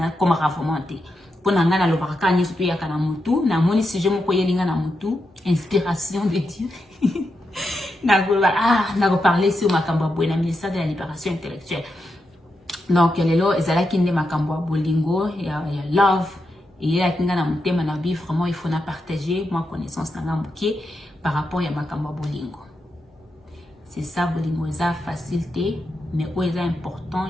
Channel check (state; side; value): normal; both; correlation 0.86